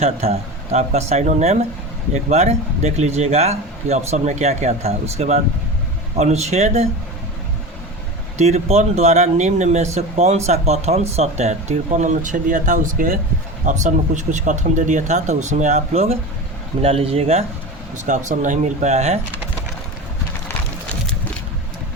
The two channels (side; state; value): both; normal; correlation 0.29